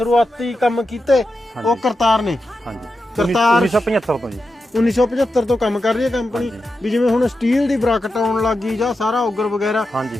ਕੰਮ ਕੀਤੇ ਉਹ ਕਰਤਾਰ ਨੇ। ਕਰਤਾਰ 1975 ਤੋਂ ਜੀ 1975 ਤੋਂ ਕੰਮ ਕਰ ਰਹੀ ਹੈ ਕੰਪਨੀ। ਵੀ ਜਿਵੇਂ ਹੁਣ ਸਟੀਲ ਦੀ ਬਰਾਕਟ ਆਉਣ ਲੱਗੀ ਜਾਂ ਸਾਰਾ ਔਗਰ ਵਗੈਰਾ,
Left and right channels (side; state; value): both; normal; correlation 0.89